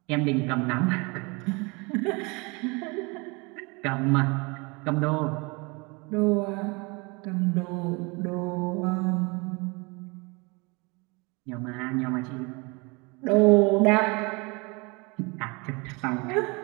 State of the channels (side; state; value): left; quieter; 28.0 dB